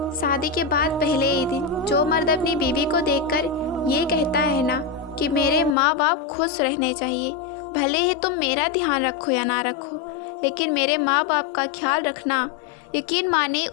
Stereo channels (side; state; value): right; drops out; at 5.8 s